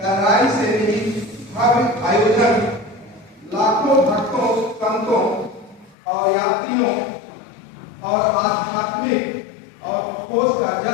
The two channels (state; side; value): drops out; right; at 6.0 s